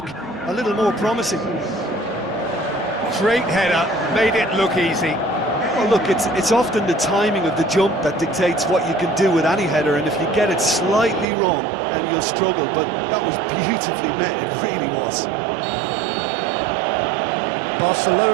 a little more promising. Great header, made it look easy. Well, look, it's often the timing of the jump that dictates what you can do with any header, and if you get it slightly wrong, then you'll struggle, but that was beautifully met, it really was.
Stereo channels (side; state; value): left; drops out; at 11.2 s